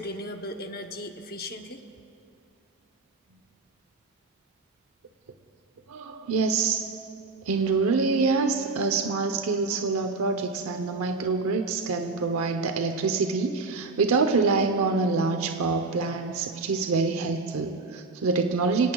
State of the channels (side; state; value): left; quieter; 3.8 dB